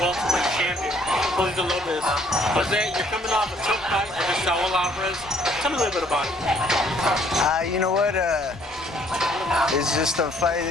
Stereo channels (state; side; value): normal; both; correlation 0.63